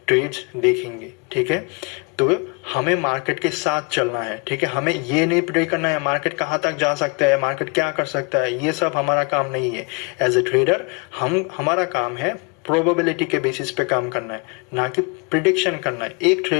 ट्रेड्स देखेंगे, ठीक है। तो हमें मार्केट के साथ चलना है, ठीक है। हमें ये नहीं प्रेडिक्ट करना है मार्केट कहाँ तक जा सकता है, मार्केट क्या कर सकता है, ये सब हमारा काम नहीं है। एज ए ट्रेडर हमारा काम है प्रोबेबिलिटी के बेसिस पे काम करना है, ना कि प्रिडिक्शन करना है। एक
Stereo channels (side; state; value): right; quieter; 31.7 dB